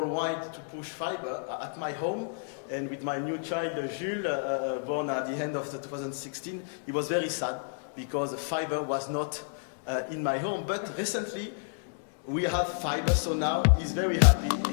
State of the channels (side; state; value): right; silent; digital silence